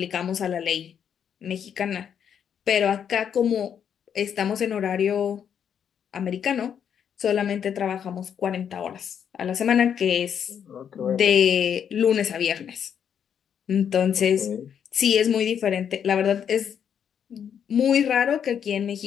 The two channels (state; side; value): quieter; right; 8.2 dB